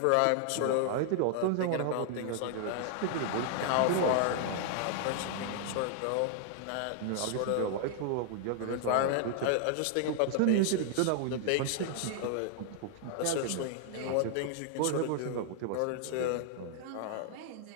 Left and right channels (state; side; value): different; both; correlation 0.00